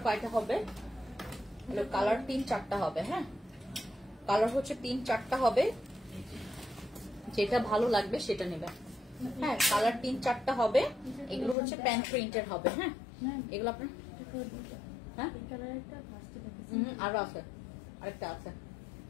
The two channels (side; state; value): right; drops out; at 11.6 s